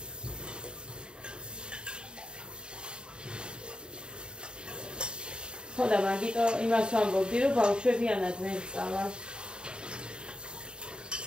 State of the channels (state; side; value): late; left; 0.050 ms